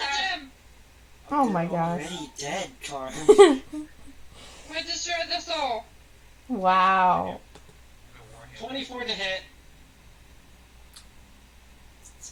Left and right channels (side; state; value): both; identical; correlation 1.00